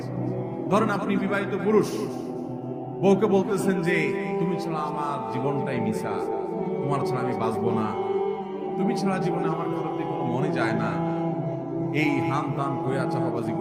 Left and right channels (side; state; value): both; identical; correlation 1.00